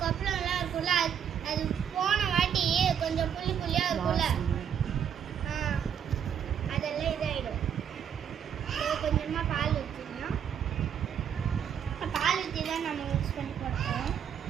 கொப்பளம்லாம் இருக்கும்ல, அது போன வாட்டி கொஞ்சம் புள்ளி புள்ளியாக இருக்கும்ல, அதெல்லாம் இதாகிடும். கொஞ்சமாக பால் ஊற்றிக்கலாம். பால் ஊற்றி தான் நம்ம மிக்ஸ் பண்ணி போட்டோம்.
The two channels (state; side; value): quieter; left; 8.4 dB